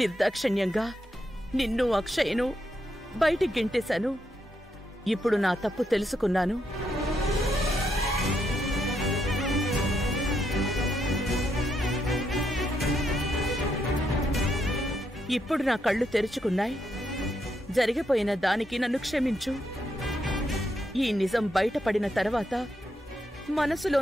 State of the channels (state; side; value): normal; both; correlation 0.79